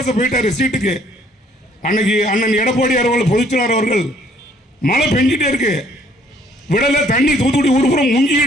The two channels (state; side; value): normal; both; correlation 0.62